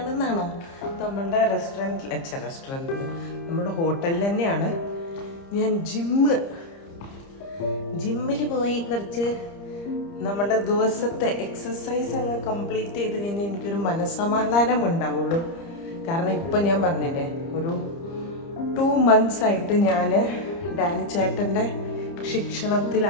നമ്മളുടെ റെസ്റ്റോറൻറ്റ് നമ്മുടെ ഹോട്ടലിൽ തന്നെയാണ്. ഞാൻ ജിമ്മിൽ പോയി കുറച്ച് നമ്മുടെ ദിവസത്തെ എക്സസൈസ് അങ്ങ് കംപ്ലീറ്റ് ചെയ്ത് കഴിഞ്ഞാൽ എനിക്കൊരു മനസ്സമാധാനം ഉണ്ടാവുള്ളൂ. കാരണം ഇപ്പം ഞാൻ പറഞ്ഞില്ലേ, ഒരു 2 months ആയിട്ട് ഞാൻ ഡാനി ചേട്ടൻ്റെ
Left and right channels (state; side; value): late; right; 30 ms